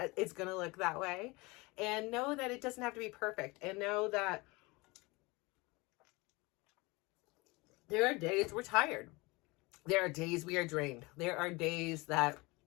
it's going to look that way. And know that it doesn't have to be perfect. And know that there are days we're tired. There are days we are drained. There are days that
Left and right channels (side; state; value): right; quieter; 24.4 dB